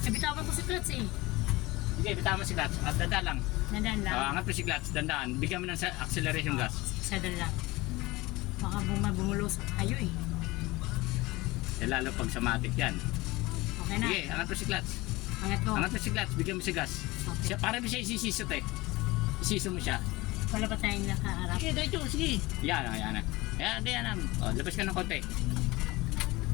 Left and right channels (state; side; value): quieter; right; 21.1 dB